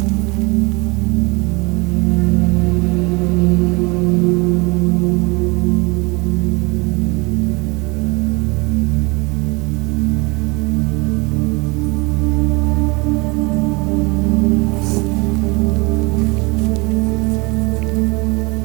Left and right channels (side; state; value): left; quieter; 27.1 dB